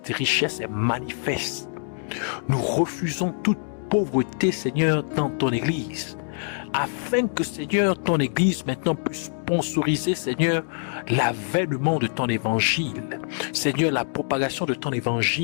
richesse est manifeste. Nous refusons toute pauvreté, Seigneur, dans ton Église, afin que, Seigneur, ton Église maintenant puisse sponsoriser, Seigneur, l'avènement de ton évangile. Seigneur, la propagation de ton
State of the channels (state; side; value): silent; right; digital silence